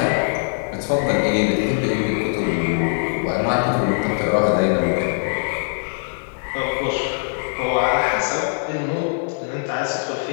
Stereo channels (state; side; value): silent; right; 65 dB below the other